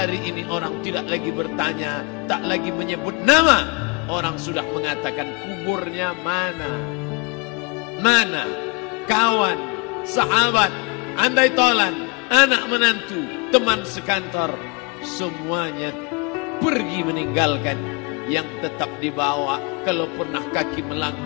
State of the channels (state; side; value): quieter; right; 30.1 dB